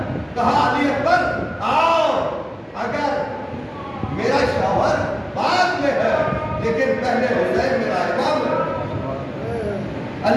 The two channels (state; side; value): identical; both; correlation 1.00